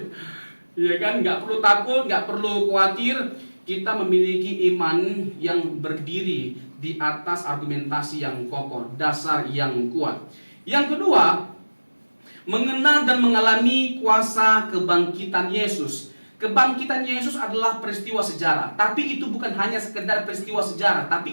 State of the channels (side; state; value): both; inverted; correlation -1.00